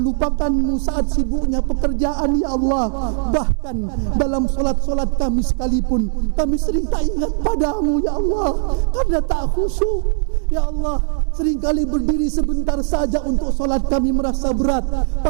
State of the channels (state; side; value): silent; left; 66 dB below the other